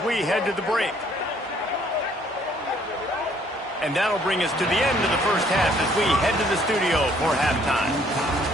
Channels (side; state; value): both; normal; correlation 0.63